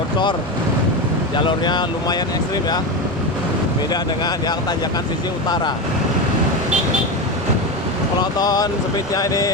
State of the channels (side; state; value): both; normal; correlation 0.18